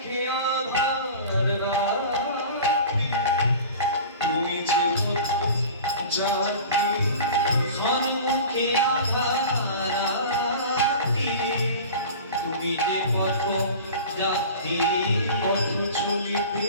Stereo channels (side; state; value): both; inverted; correlation -0.37